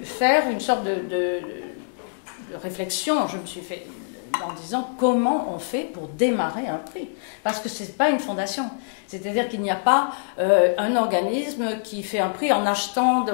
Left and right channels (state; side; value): silent; right; digital silence